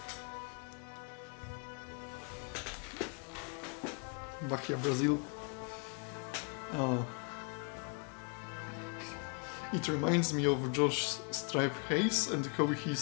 Bahia, Brazil. It reminds me of Josh Stripe Hayes and how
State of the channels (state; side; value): quieter; right; 38.0 dB